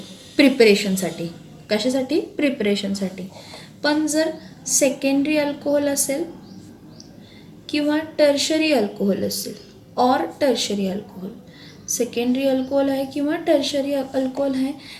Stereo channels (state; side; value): identical; both; correlation 1.00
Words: प्रिपरेशनसाठी. कशासाठी, प्रिपरेशनसाठी. पण जर सेकंडरी अल्कोहोल असेल किंवा टर्शरी अल्कोहोल असेल, सेकंडरी अल्कोहोल आहे किंवा टर्शरी अल्कोहोल आहे